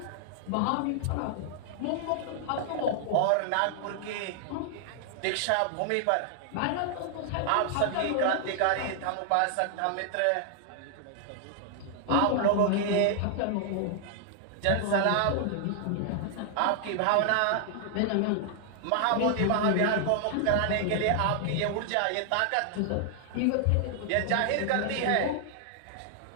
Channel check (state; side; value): different; both; correlation -0.01